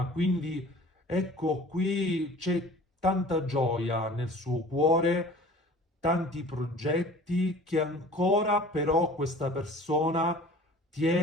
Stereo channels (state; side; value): normal; both; correlation 0.45